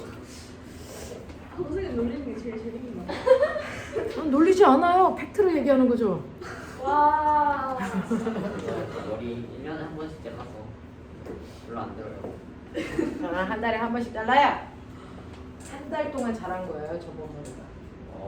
선생님 놀리는 게 제일 재밌는 거 같아요. 놀리지 않아요. 팩트로 얘기하는 거죠. 와. 머리 1년에 한 번씩 잘라서 별로 안 들어요. 한 달에 한 번씩 잘라야 한 달 동안 자란 거예요. 저번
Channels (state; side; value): identical; both; correlation 1.00